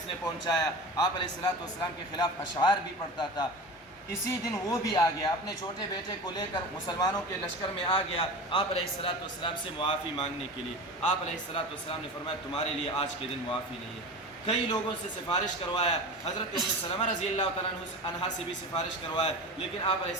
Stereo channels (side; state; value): both; normal; correlation 0.31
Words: نے پہنچایا، آپ علیہ السلام کے خلاف اشعار بھی پڑھتا تھا۔ اسی دن وہ بھی آ گیا، اپنے چھوٹے بیٹے کو لے کر مسلمانوں کے لشکر میں آ گیا آپ علیہ السلام سے معافی مانگنے کے لیے۔ آپ علیہ السلام نے فرمایا تمہارے لیے آج کے دن معافی نہیں ہے۔ کئی لوگوں سے سفارش کروایا، حضرت ام سلمہ رضی اللہ تعالیٰ عنہا سے بھی سفارش کروایا، لیکن آپ علیہ